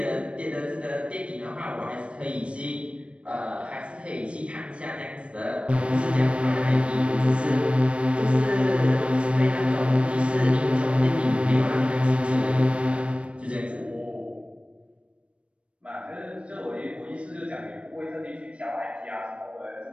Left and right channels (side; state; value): left; late; 0.060 ms